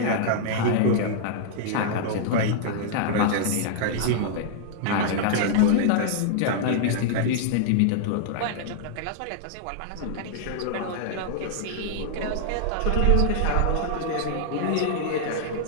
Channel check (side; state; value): both; different; correlation -0.01